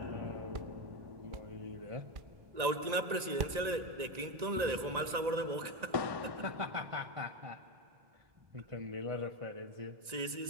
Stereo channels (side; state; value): left; late; 1.9 ms